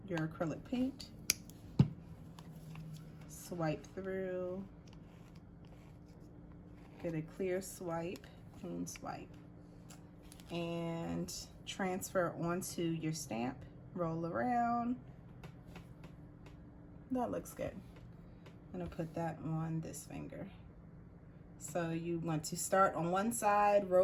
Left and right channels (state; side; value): identical; both; correlation 1.00